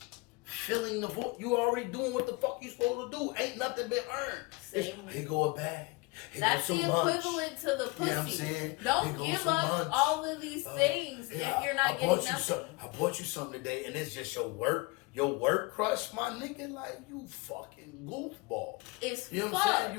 filling the vote. You already doing what the fuck you supposed to do. Ain't nothing been earned. Here go a bag. That's the equivalent to the pussy. You know what I'm saying? Don't give up all of these things if you're not getting nothing. I bought you something today, and it's just your work crush, my nigga. Like, you fucking goofball. It's you know what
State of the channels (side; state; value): right; quieter; 25.2 dB